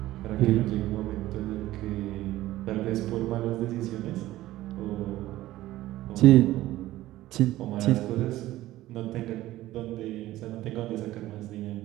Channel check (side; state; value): left; quieter; 15.8 dB